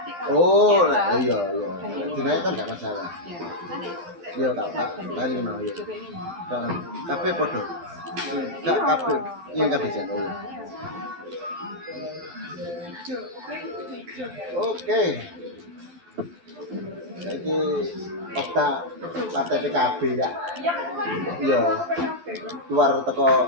kalau Oh, dicetak, iya iya. Dinaikkan nggak masalah. ya nanti Iya tak ganti tadi hijau. mana ya. Hijau kayak gini. Kafe podo. Kak kafe, iya kafe jan. Oh, iya. Hijau, pokoknya hijau. Oke. Jadi Okta partai PKB ya. Iya kan kemarin Iya. PKB. Keluar teko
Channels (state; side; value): late; left; 12 ms